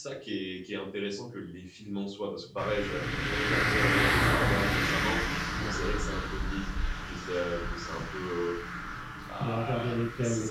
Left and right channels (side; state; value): both; identical; correlation 1.00